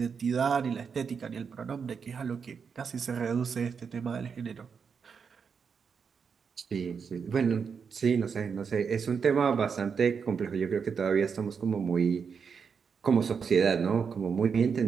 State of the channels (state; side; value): quieter; left; 6.2 dB